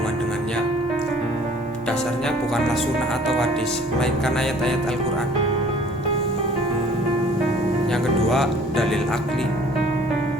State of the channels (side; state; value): both; normal; correlation 0.53